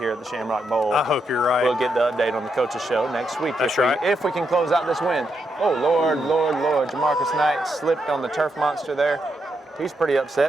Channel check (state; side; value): normal; both; correlation 0.81